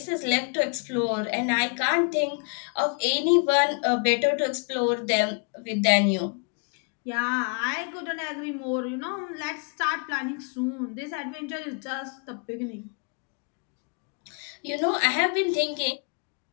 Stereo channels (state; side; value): quieter; right; 39.1 dB